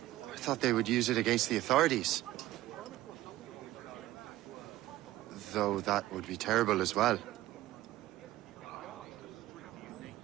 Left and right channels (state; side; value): quieter; left; 15.8 dB